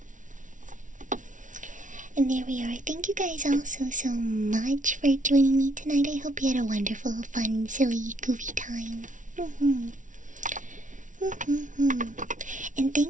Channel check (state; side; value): late; left; 0.37 ms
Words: And there we are. Thank you guys all so much for joining me tonight. I hope you had a wonderful, fun, silly, goofy time. And